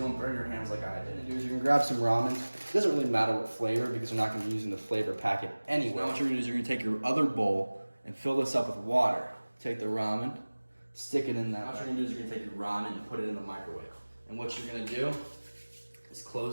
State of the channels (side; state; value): both; inverted; correlation -1.00